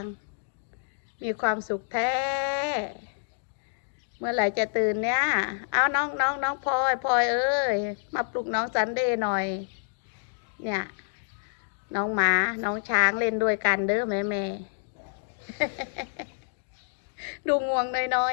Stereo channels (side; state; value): right; silent; digital silence